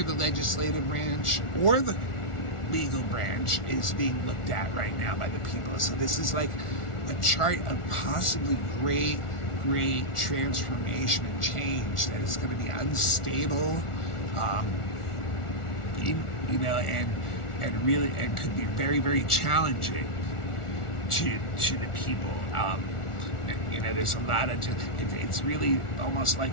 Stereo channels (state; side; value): late; right; 1.4 ms